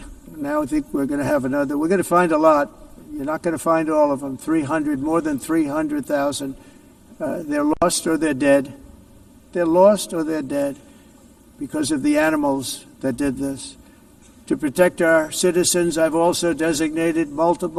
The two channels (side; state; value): both; identical; correlation 1.00